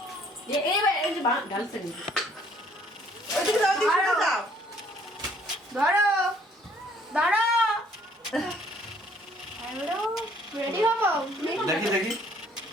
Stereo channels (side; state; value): both; normal; correlation 0.61